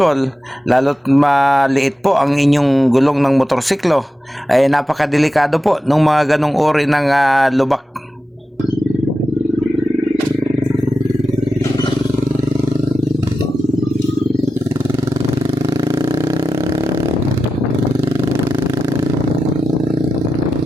lalo't maliit po ang inyong gulong ng motorsiklo, ay napakadelikado po ng mga ganong uri ng lubak.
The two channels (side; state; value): both; normal; correlation 0.91